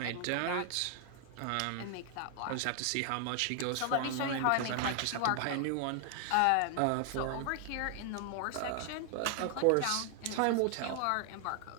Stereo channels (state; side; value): different; both; correlation 0.00